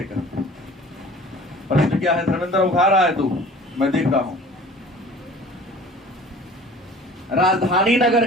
कहते हैं। प्रश्न क्या है? धर्मेंद्र उठा रहा है तू, मैं देख रहा हूं। राजधानी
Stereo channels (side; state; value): both; normal; correlation 0.46